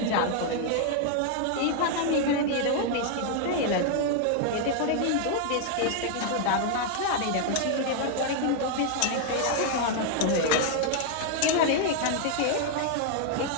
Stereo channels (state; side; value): different; both; correlation 0.00